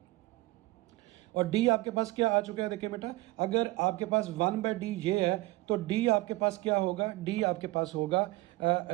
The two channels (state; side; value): quieter; left; 20.1 dB